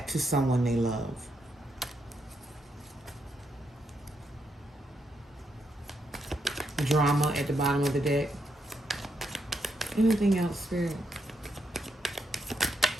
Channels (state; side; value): normal; both; correlation 0.79